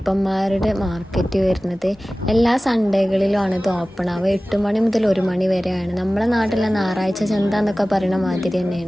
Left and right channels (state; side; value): normal; both; correlation 0.97